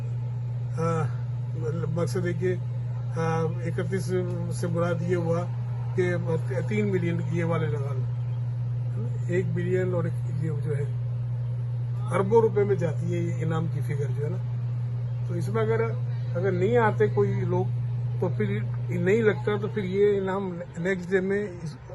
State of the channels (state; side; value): identical; both; correlation 1.00